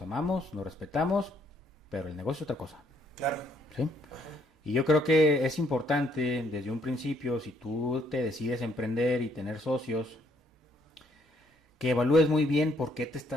amamos, nos respetamos, pero el negocio es otra cosa. Claro. ¿Sí? Y yo creo que es importante desde un principio, si tú te decides emprender y tener socios, que evalúes muy bien por qué te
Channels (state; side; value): normal; both; correlation 0.68